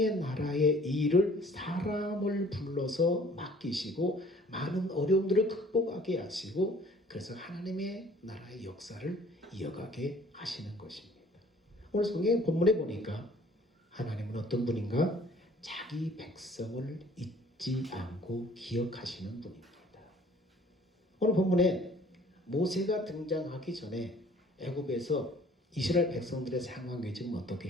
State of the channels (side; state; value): both; normal; correlation 0.54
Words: 나라의 일을 사람을 불러서 맡기시고 많은 어려움들을 극복하게 하시고 그래서 하나님의 나라의 역사를 이어가게 하시는 것입니다. 오늘 성경 본문에 보니까 하나님은 어떤 분인가? 자기 백성을 잊지 않고 기억하시는 분입니다. 오늘 본문에 모세가 등장하기 전에 애굽에서 이스라엘 백성들의 상황이 지금